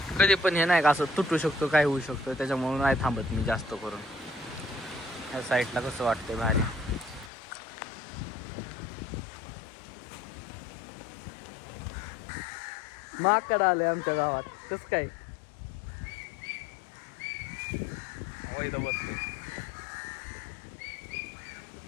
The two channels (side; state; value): right; drops out; at 7.3 s